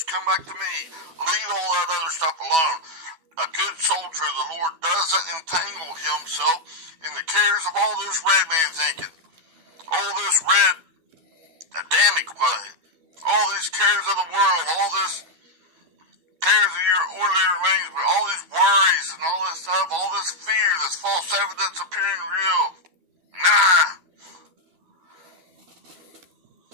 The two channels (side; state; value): left; late; 12 ms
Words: come back to me. Leave all that other stuff alone. A good soldier of the Lord doesn't entangle himself in the cares of all this red man thinking. All this red Adamic way. All these cares of the world. All this cares of your ordinary arrangement. All these worries and all this stuff. All this fear. This false evidence appearing real. Nah.